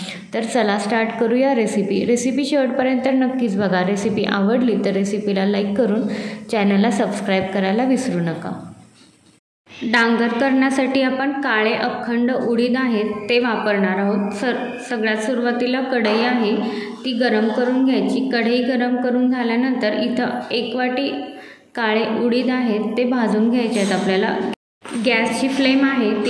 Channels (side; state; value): both; identical; correlation 1.00